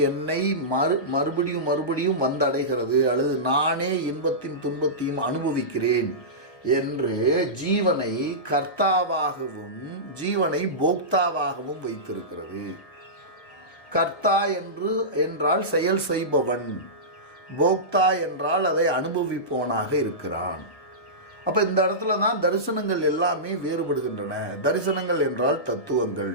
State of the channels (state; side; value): late; right; 1.2 ms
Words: என்னை மறுபடியும் வந்தடைகிறது, அல்லது நானே இன்பத்தின் துன்பத்தையும் அனுபவிக்கிறேன் என்று ஜீவனை கர்த்தாவாகவும் ஜீவனை போக்தாவாகவும் வைத்திருக்கிறது. கர்த்தா என்றால் செயல் செய்பவன், போக்தா என்றால் அதை அனுபவிப்பவனாக இருக்கிறான். அப்ப இந்த இடத்துல தான் தரிசனங்கள் எல்லாமே வேறுபடுகின்றன. தரிசனங்கள் என்றால் தத்துவங்கள்.